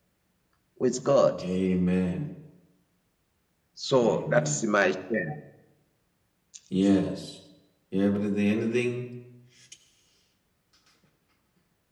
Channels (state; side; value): identical; both; correlation 1.00